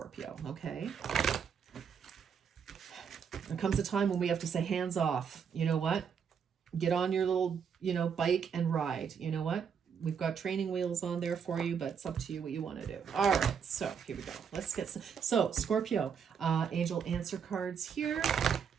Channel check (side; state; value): left; quieter; 7.0 dB